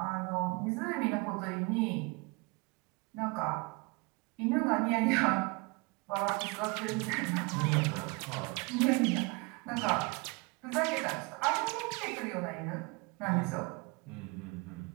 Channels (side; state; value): left; quieter; 28.2 dB